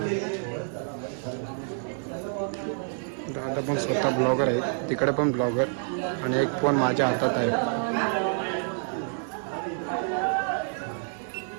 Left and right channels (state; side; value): silent; left; 55 dB below the other